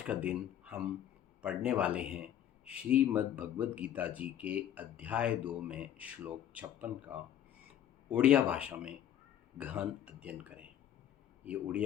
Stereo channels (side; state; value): right; quieter; 10.8 dB